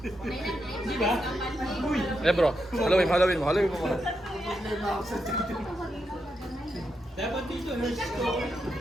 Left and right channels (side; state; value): both; normal; correlation 0.84